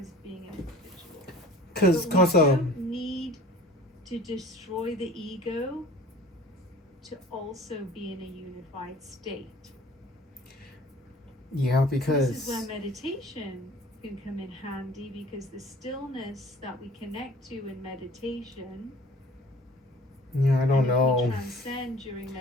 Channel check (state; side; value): normal; both; correlation 0.46